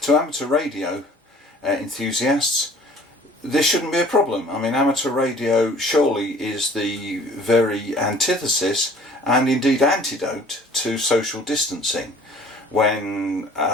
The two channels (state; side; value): normal; both; correlation 0.51